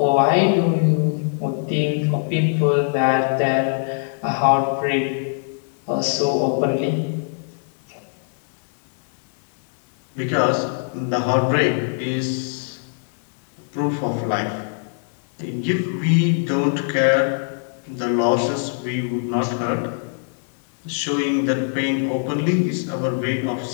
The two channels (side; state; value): right; silent; digital silence